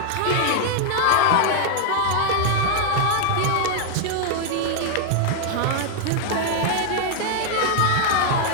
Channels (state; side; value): different; both; correlation 0.00